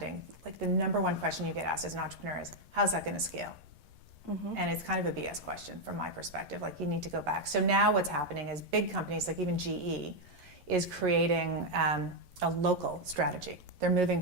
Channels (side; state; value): left; late; 11 ms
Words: like, the number one question you get asked as an entrepreneur is, how's that going to scale? Mm-hmm. And it's kind of a BS question from my perspective. Like, you need to go back. So now what's happening is big companies, like even GE, is creating a local strategy. They're moving